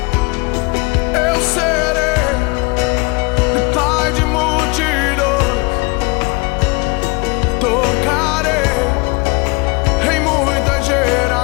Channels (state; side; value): quieter; right; 27.4 dB